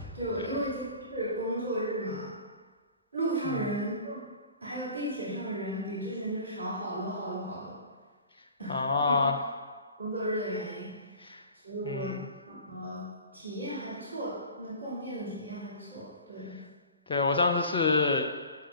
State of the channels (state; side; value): inverted; both; correlation -0.43